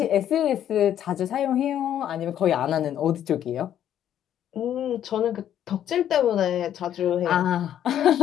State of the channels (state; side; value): quieter; right; 10.5 dB